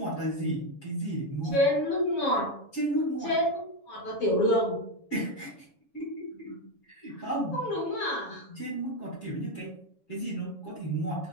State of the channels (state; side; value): late; right; 7.1 ms